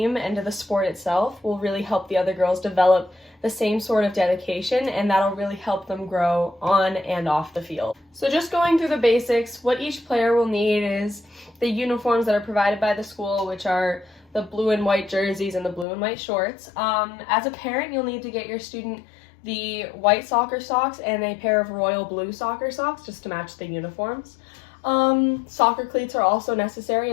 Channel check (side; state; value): right; drops out; at 15.9 s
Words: and to the sport itself will really help the other girls develop the same sort of dedication, and that'll really help them grow on and off the field. So just going through the basics, what each player will need is the uniforms that are provided by the school, which are the blue and white jerseys and the blue and white shorts. As a parent, you'll need to get your student the white soccer socks and a pair of royal blue soccer socks just to match the uniforms. Soccer cleats are also necessary,